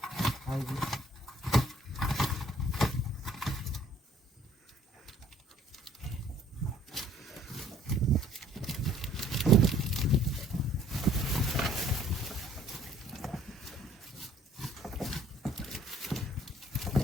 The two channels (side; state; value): both; normal; correlation 0.59